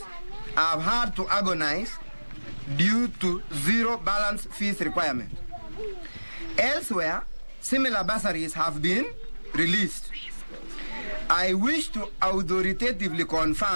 have had to agonize due to zero balance fees requirement. Elsewhere, similar bursaries have been released. I wish to authoritatively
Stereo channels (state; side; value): inverted; both; correlation -1.00